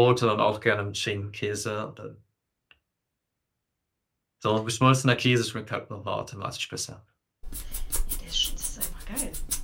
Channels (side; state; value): both; identical; correlation 1.00